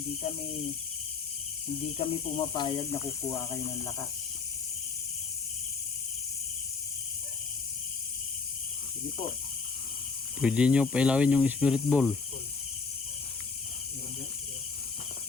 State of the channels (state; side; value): quieter; right; 4.8 dB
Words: Hindi kami pumapayag na kukuha kayo ng lakas. Sige po. Pwede nyo pailawin yung spirit ball.